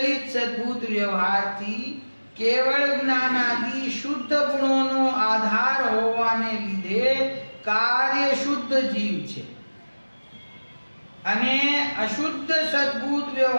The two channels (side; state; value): both; inverted; correlation -1.00